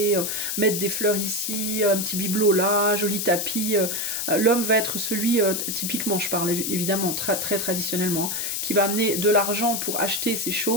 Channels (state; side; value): noise; left; hiss, 2 dB below the sound